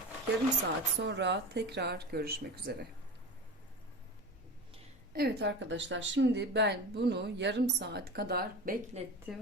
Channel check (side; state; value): both; normal; correlation 0.29